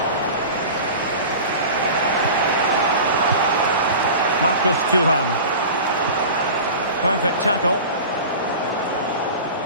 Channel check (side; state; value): both; inverted; correlation -0.35